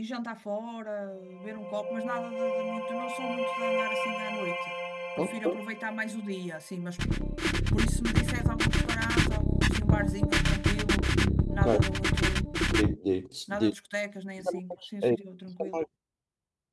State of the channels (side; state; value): both; identical; correlation 1.00